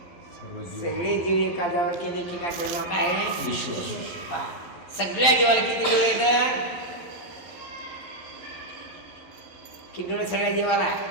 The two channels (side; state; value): right; late; 11 ms